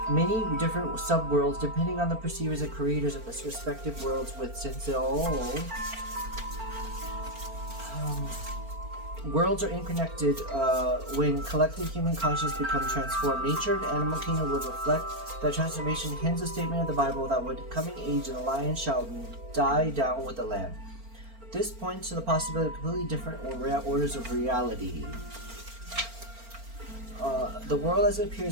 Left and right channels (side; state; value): left; late; 4.4 ms